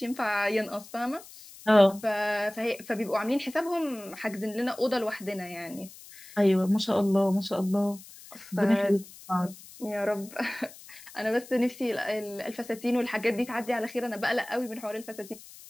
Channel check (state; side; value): noise; left; hiss, 18 dB below the sound